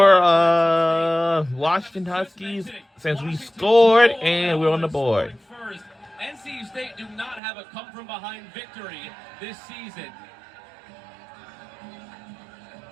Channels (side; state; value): left; drops out; at 7.4 s